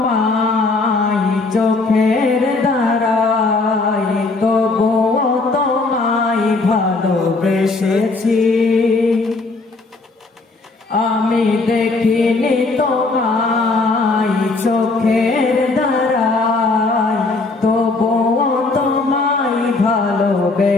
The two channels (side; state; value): right; quieter; 3.6 dB